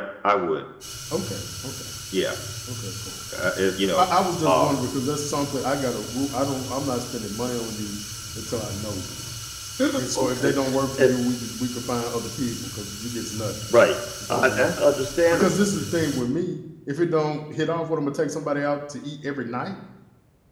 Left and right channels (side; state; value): both; identical; correlation 1.00